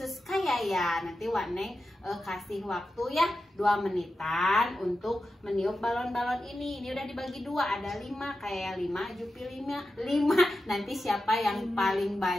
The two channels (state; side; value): normal; both; correlation 0.91